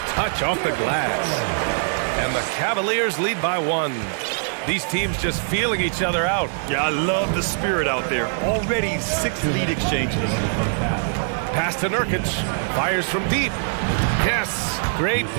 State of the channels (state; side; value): silent; left; 64 dB below the other